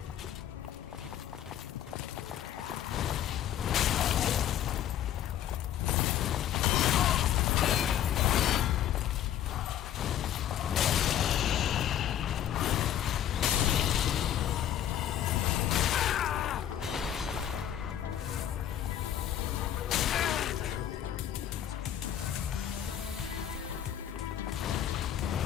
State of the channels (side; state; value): right; quieter; 10.8 dB